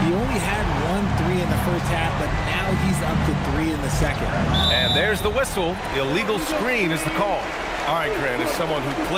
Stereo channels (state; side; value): identical; both; correlation 1.00